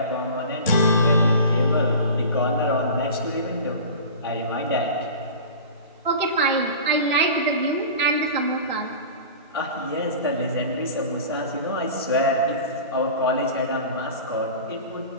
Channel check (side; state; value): both; inverted; correlation -0.36